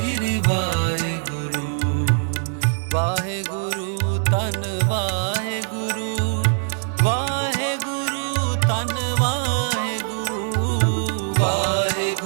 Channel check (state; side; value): silent; left; digital silence